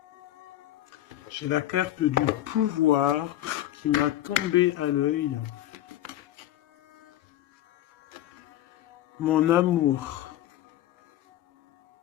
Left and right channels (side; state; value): right; quieter; 13.5 dB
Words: J'ai la carte du pouvoir qui m'a tombé à l'œil. Mon amour.